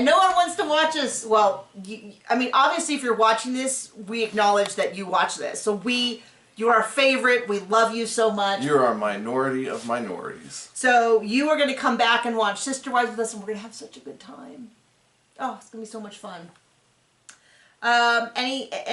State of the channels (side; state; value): both; identical; correlation 1.00